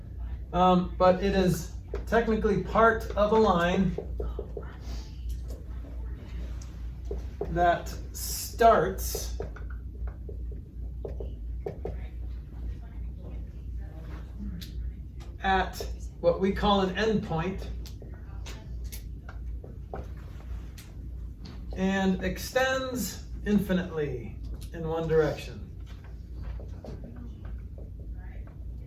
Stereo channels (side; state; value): both; identical; correlation 1.00